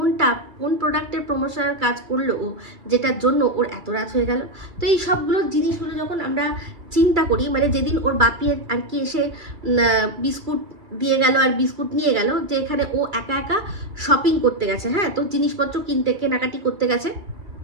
কোন প্রোডাক্টের প্রমোশনের কাজ করলো ও, যেটার জন্য ওর এত রাত হয়ে গেল? তো এই সবগুলো জিনিসগুলো যখন আমরা চিন্তা করি, মানে যেদিন ওর বাপি আর কি এসে বিস্কুট দিয়ে গেল আর বিস্কুট নিয়ে গেল, যে এখানে ও একা শপিং করতে গেছে, হ্যাঁ, তো জিনিসপত্র কেনাকাটি করতে গেছে,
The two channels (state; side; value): late; left; 2.3 ms